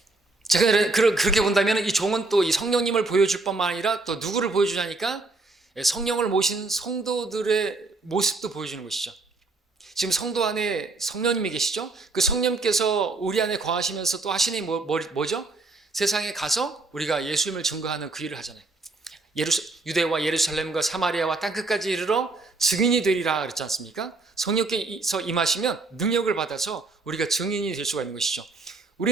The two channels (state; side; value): quieter; left; 3.4 dB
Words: 제가 그렇게 본다면 이 종은 또 이 성령님을 보여줄 뿐만 아니라 또 누구를 보여주냐니까, 성령을 모신 성도들의 모습도 보여주는 것이죠. 지금 성도 안에 성령님이 계시죠? 그 성령님께서 우리 안에 거하시면서 또 하시는 뭐죠? 세상에 가서 우리가 예수님을 증거하는 그 일을 하잖아요. 유대와 예루살렘과 사마리아와 땅끝까지 이르러 증인이 되리라 그랬지 않습니까? 성령께서 임하시면 능력을 받아서 우리가 증인이 될 수가 있는 것이죠.